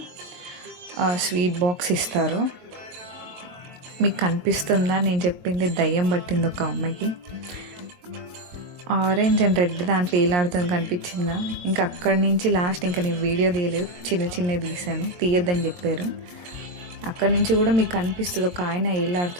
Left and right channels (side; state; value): left; late; 22 ms